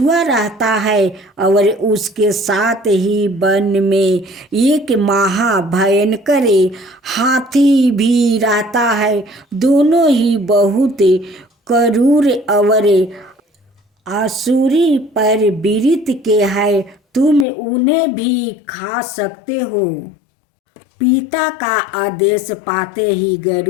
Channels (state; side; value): drops out; right; at 17.4 s